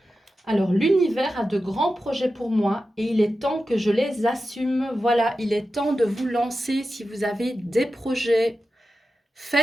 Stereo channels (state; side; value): normal; both; correlation 0.92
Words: Alors, l'univers a de grands projets pour moi et il est temps que je les assume. Voilà, il est temps de vous lancer si vous avez des projets.